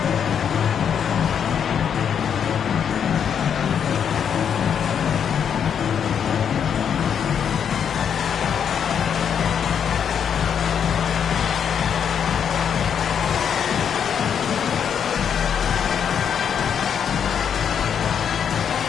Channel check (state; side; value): quieter; right; 7.9 dB